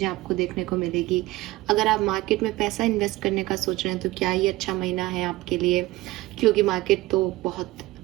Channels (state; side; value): quieter; left; 18.7 dB